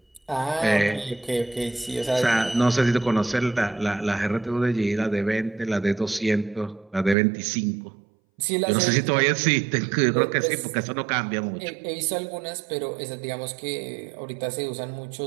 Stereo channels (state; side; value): drops out; left; at 7.2 s